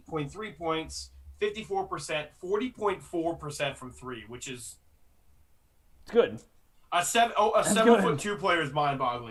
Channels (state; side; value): identical; both; correlation 1.00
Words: points, 54%, 40.4% from 3, which is It's good. a 7'2" player is